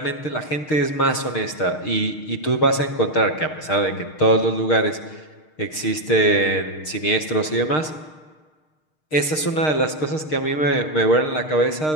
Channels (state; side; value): late; right; 6.5 ms